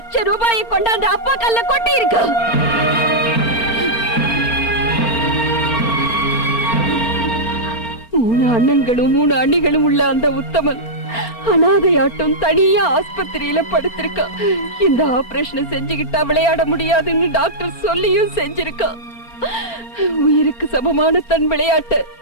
கொண்டாந்து அப்பா கல்ல கொட்டி இருக்கான். 3 அண்ணன்களும் 3 அண்ணிகளும் உள்ள அந்த உத்தமன் அனாதையாட்டம் தனியா ஆஸ்பத்திரியில படுத்திருக்கான். இந்த ஆபரேஷனை செஞ்சுக்கிட்டா விளையாட முடியாதுன்னு டாக்டர் சொல்லியும் செஞ்சிருக்கான். உயிருக்கு சமமான தன் விளையாட்டு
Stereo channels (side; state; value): right; late; 4.3 ms